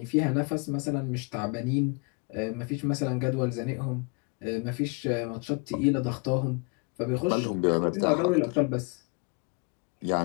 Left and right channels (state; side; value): quieter; right; 32.9 dB